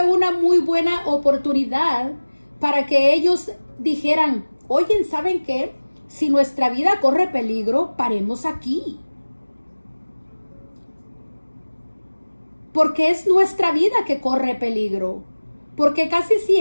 una muy buena oportunidad para que ellos dijeran, oye, ¿saben qué? Si nuestra vida corre peligro, paremos aquí. Porque es nuestra vida que corre peligro. Porque casi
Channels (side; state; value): both; inverted; correlation -1.00